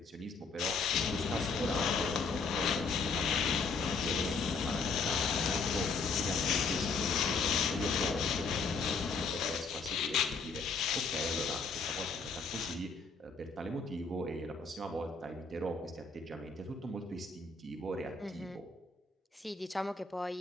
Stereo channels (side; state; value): right; quieter; 4.4 dB